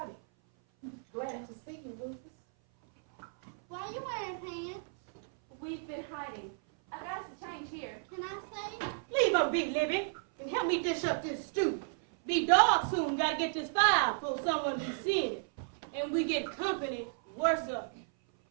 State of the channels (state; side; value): silent; left; 55 dB below the other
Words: Glad to see you, Rufus. Why are you wearing pants? We've been hiding. I got us a change here. Can I say? Leave her be, Libby, and help me dish up this stew. Be dark soon, gotta get this fire before someone be seeing it. And we get company worse up